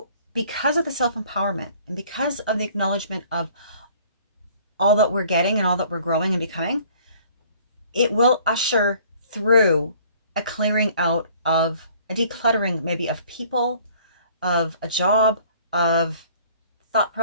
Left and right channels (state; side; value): inverted; both; correlation -0.55